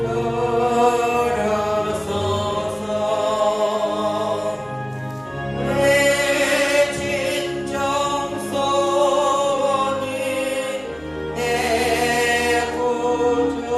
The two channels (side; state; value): right; noise; hum, 29 dB below the sound